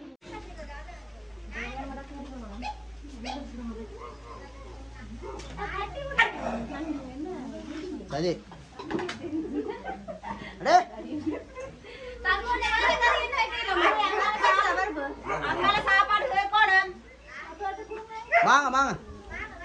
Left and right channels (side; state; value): both; identical; correlation 1.00